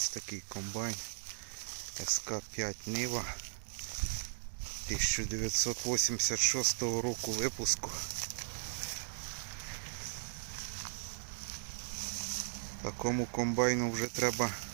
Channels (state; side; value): silent; left; digital silence